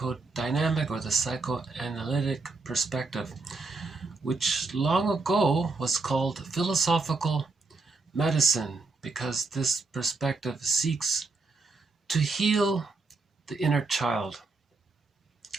or the psychoanalytic perspective, which long ago was called philosophical medicine because this perspective seeks to heal the inner child,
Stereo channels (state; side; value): quieter; left; 3.7 dB